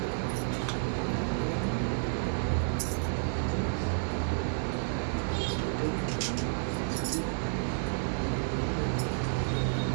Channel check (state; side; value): silent; left; digital silence